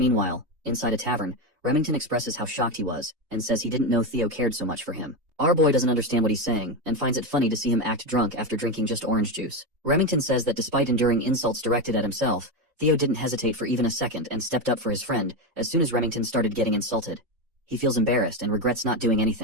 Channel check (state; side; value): late; left; 3.2 ms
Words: inside a tavern, Remington expresses how shocked he was, and says he didn't know Theo cared so much for him. Our boy doesn't understand what he's saying, and finds it funny to see him act drunk after drinking just orange juice. Remington says that despite enduring insults directed at himself, Theo didn't hesitate for even a second and stepped up for his friend as soon as Remington started getting insulted. He feels embarrassed and regrets not doing